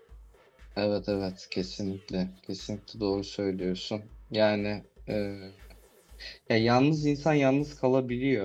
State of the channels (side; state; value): both; identical; correlation 1.00